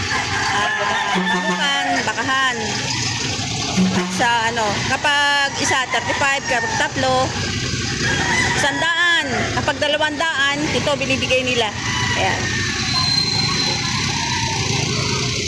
bakahan. Sa ano, kapag isa, 35, kapag tatlo, 100, kapag 200, ito binibigay nila. Ayan.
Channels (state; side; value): identical; both; correlation 1.00